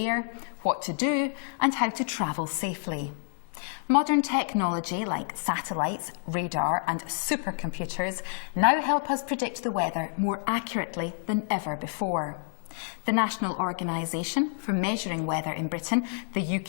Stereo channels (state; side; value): silent; right; 55 dB below the other